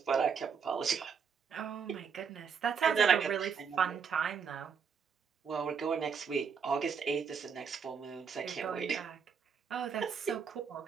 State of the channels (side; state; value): left; quieter; 6.5 dB